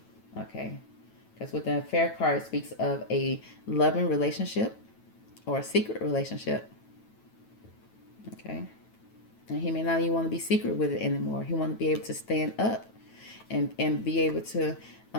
Okay. Because with the affair card, it speaks of a loving relationship or a secret relationship. Okay. And he may not even want to be secret with it anymore. He want to be able to stand up and be able to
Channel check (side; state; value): right; late; 9.1 ms